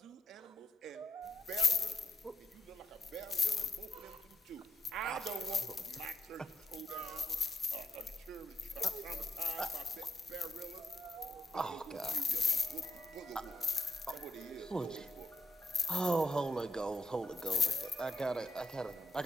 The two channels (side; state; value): both; normal; correlation 0.80